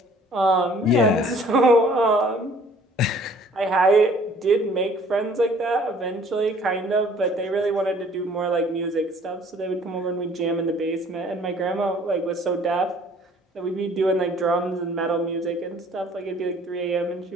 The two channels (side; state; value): both; normal; correlation 0.55